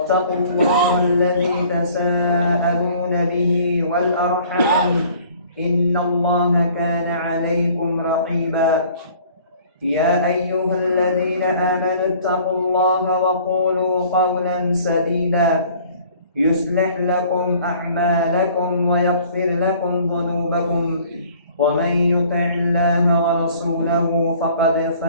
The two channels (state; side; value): inverted; both; correlation -0.53